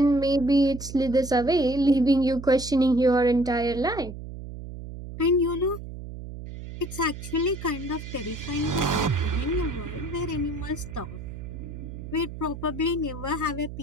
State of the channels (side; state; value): right; noise; hum, 11 dB below the sound